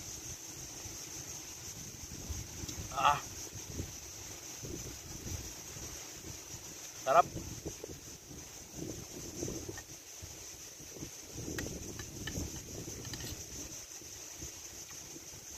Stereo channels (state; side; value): identical; both; correlation 1.00